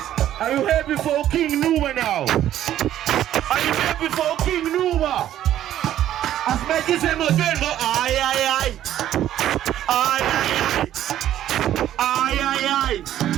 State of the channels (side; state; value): left; quieter; 12.0 dB